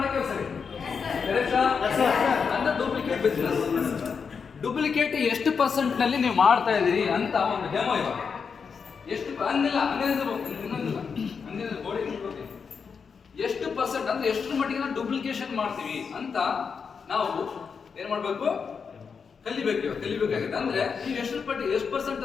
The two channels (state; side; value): quieter; right; 5.9 dB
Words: ಕೆಲಸ ಅಂದ್ರೆ ಡೂಪ್ಲಿಕೇಟ್ ಬಿಸ್ನೆಸ್. ಡೂಪ್ಲಿಕೇಟ್ ಎಷ್ಟು ಪರ್ಸೆಂಟ್ ನಲ್ಲಿ ನೀವು ಮಾಡ್ತಾ ಇದೀರಿ ಅಂತ ಒಂದು ಡೆಮೋ ಇವಾಗ ಎಷ್ಟು ಅಂದಿಲ್ಲ ಇನ್ನೊಂದಿಲ್ಲ ಬೋಡಿ ಎಷ್ಟು ಪರ್ಸೆಂಟ್ ಅಂದ್ರೆ ಎಷ್ಟು ಮಟ್ಟಿಗೆ ನಾವು ಡೂಪ್ಲಿಕೇಶನ್ ಮಾಡ್ತೀವಿ ಅಂತ ನಾವು ಏನ್ ಮಾಡ್ಬೇಕು ಕಲಿಬೇಕಾಗಿದೆ. ಅಂದ್ರೆ ನೀವು ಎಷ್ಟು ಪರ್ಸೆಂಟ್